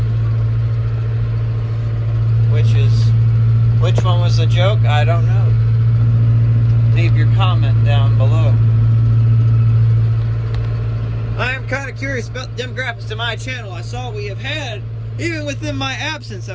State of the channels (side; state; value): both; identical; correlation 1.00